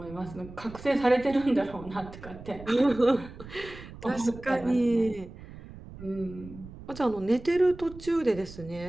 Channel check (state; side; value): noise; right; rumble, 16 dB below the sound